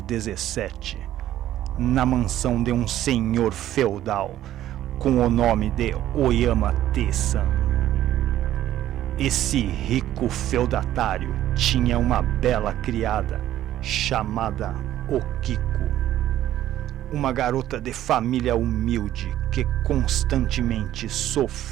XVII, na mansão de um senhor feudal com o nome de Oyama Te-san. Esse rico feudatário tinha uma bela criada chamada Okiko, uma garota de família humilde que constantemente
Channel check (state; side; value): quieter; left; 12.8 dB